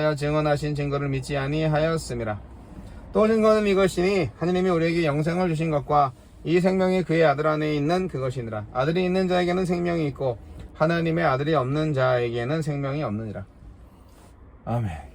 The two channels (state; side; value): identical; both; correlation 1.00